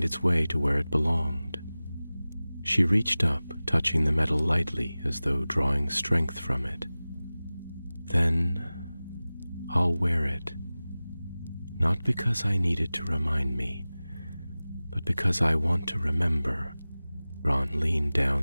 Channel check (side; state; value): both; inverted; correlation -0.98